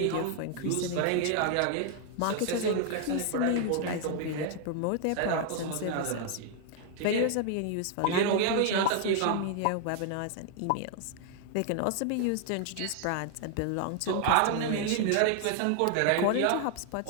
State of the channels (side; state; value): both; different; correlation 0.00